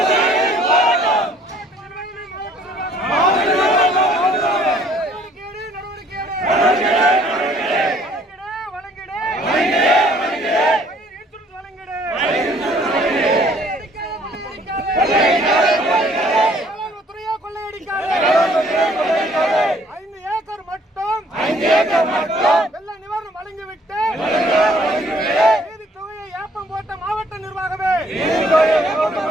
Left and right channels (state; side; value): normal; both; correlation 0.60